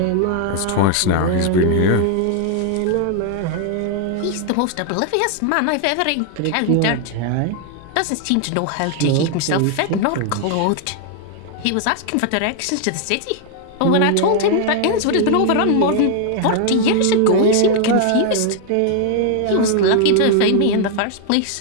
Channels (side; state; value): both; different; correlation 0.00